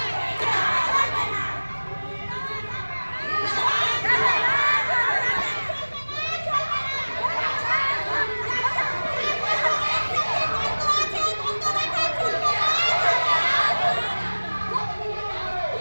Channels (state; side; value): inverted; both; correlation -1.00